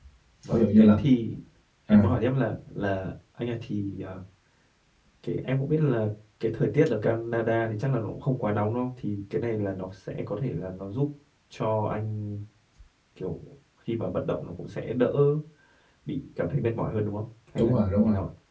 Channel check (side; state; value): both; identical; correlation 1.00